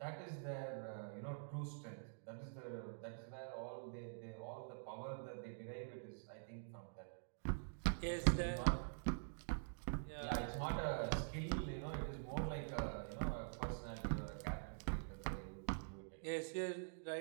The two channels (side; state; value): left; silent; digital silence